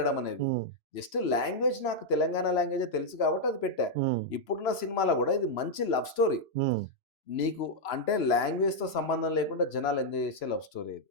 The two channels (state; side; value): late; right; 3.0 ms